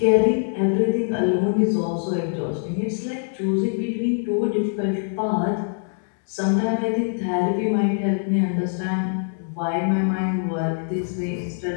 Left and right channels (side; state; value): right; silent; digital silence